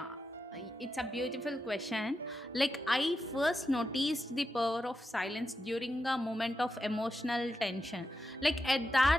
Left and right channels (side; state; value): both; normal; correlation 0.88